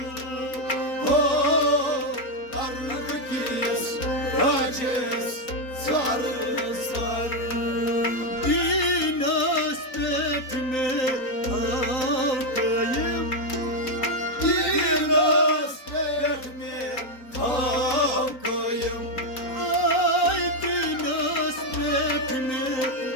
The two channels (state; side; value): late; right; 3.9 ms